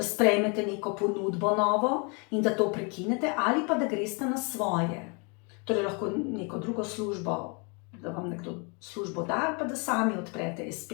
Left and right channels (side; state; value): right; quieter; 33.7 dB